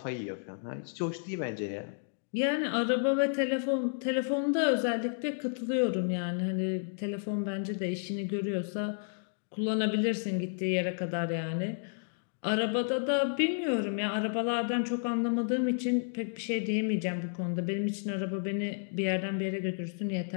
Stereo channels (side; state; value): right; silent; digital silence